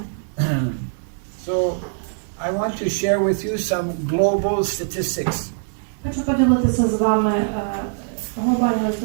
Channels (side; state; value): left; silent; digital silence